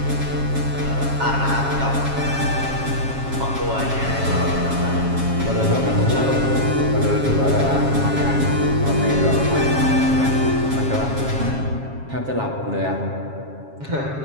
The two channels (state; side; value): late; left; 7.3 ms